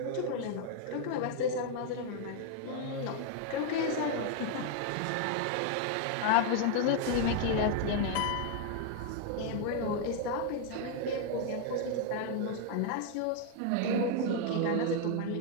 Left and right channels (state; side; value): different; both; correlation 0.00